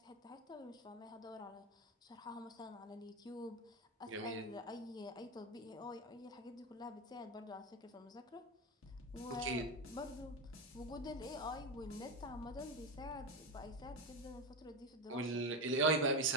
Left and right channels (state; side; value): normal; both; correlation 0.16